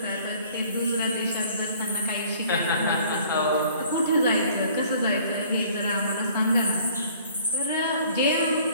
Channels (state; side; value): inverted; both; correlation -0.54